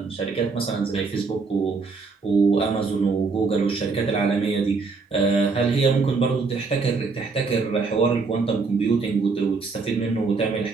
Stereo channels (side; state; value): left; quieter; 4.4 dB